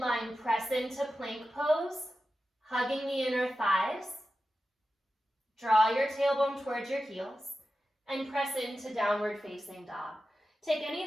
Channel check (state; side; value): normal; both; correlation 0.92